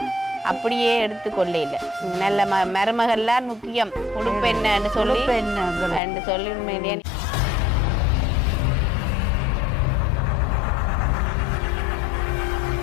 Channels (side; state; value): right; drops out; at 6.0 s